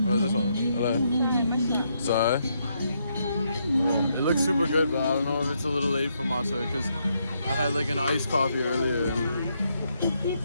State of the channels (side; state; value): both; inverted; correlation -0.77